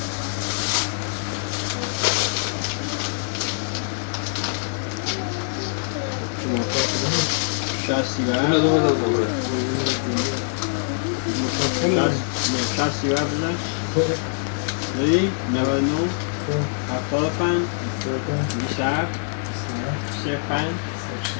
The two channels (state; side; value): silent; right; 60 dB below the other